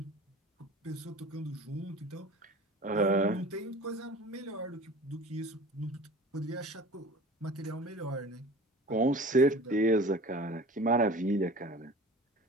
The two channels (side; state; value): both; normal; correlation 0.41